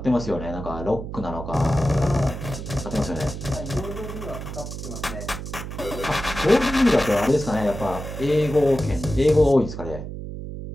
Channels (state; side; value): noise; right; hum, 8 dB below the sound